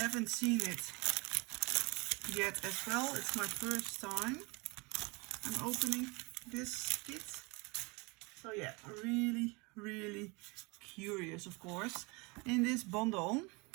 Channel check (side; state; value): left; quieter; 27.7 dB